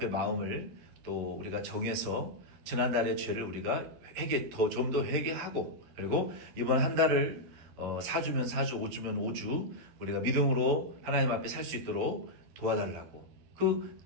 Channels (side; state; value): left; late; 11 ms